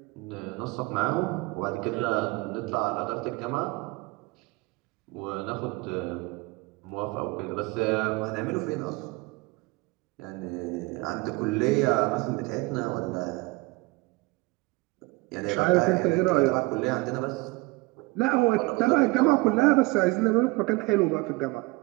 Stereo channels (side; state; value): left; quieter; 23.8 dB